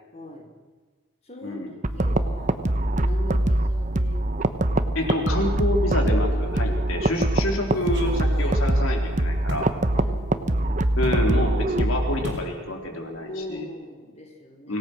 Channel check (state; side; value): normal; both; correlation 0.67